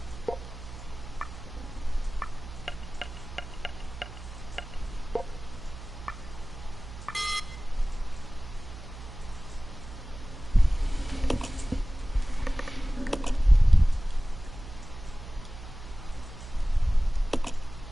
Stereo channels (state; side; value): noise; right; hum, 13 dB below the sound